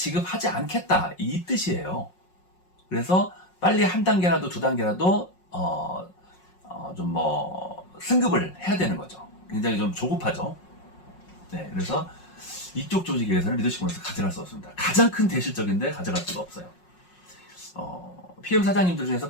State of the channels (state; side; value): late; right; 5.5 ms